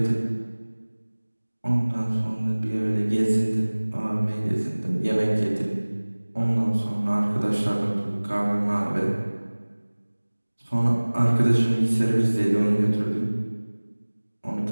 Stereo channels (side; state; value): both; inverted; correlation -1.00